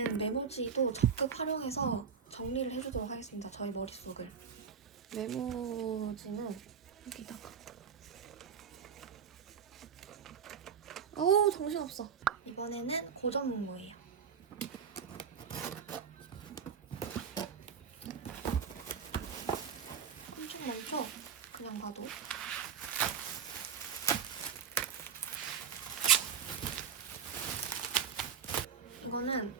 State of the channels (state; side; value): quieter; left; 6.8 dB